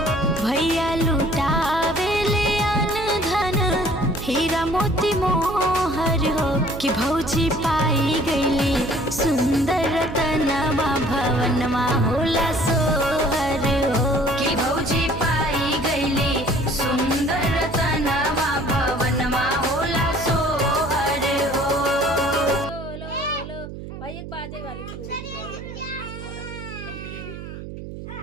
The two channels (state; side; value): noise; right; hum, 11 dB below the sound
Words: भैया लुटावेले अन धन हीरा मोती मोहर हो। कि भौजी पाई गईली सुंदर रतनवा भवनमा होला सोहर हो। कि भौजी पाई गईली सुंदर रतनवा भवनमा होला सोहर हो। भाई एक बाजे वाली चूड़ी